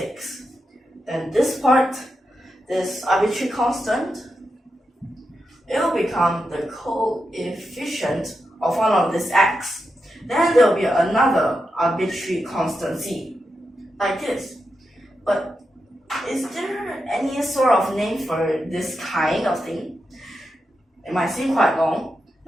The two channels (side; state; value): both; normal; correlation 0.87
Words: Then this part, this arbitrary constant, it will become the coefficient of one of this x. Then there will be another arbitrary constant c, like this. But is there any sort of name for this kind of thing? It might seem quite long.